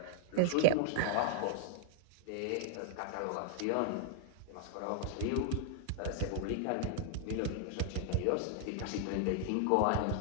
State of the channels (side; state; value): both; different; correlation -0.01